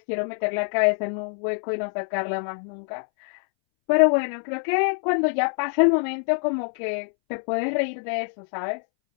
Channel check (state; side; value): silent; right; 62 dB below the other